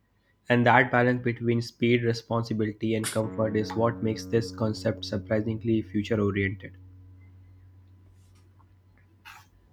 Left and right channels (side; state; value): both; identical; correlation 1.00